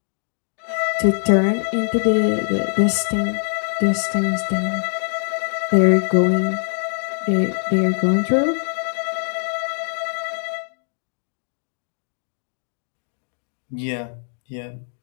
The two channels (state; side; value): silent; right; digital silence